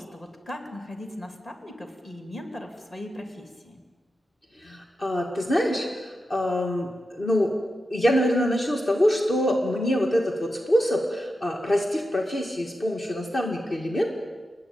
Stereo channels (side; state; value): both; normal; correlation 0.90